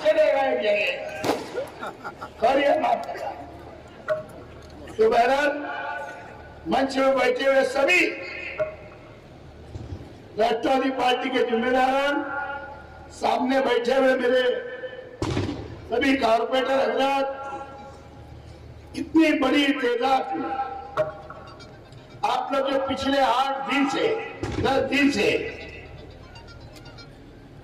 चलेगा एक जगह और माफ करना। तो बहरहाल मंच में बैठे हुए सभी राष्ट्रवादी पार्टी के जिम्मेदार, सामने बैठे हुए मेरे सभी कारपोरेटर हजरात, इतनी बड़ी तादाद में आप लोग जो पिछले 8 दिन से 10 दिन से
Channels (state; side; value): identical; both; correlation 1.00